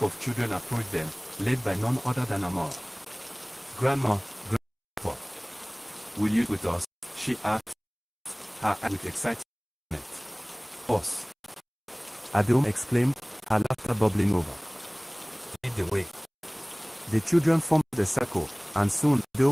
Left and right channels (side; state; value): both; identical; correlation 1.00